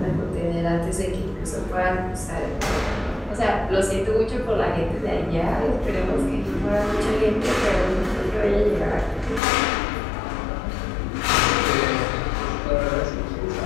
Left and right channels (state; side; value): drops out; right; at 9.4 s